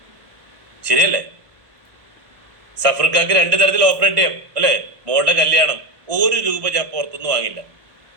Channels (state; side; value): late; left; 1.4 ms